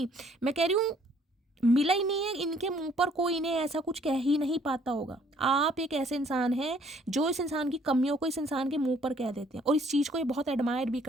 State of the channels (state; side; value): normal; both; correlation 0.61